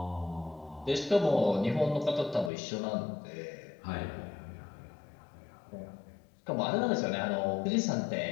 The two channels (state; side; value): drops out; right; at 2.5 s